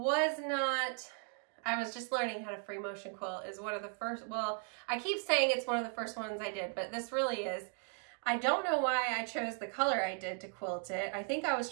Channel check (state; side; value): quieter; left; 38.8 dB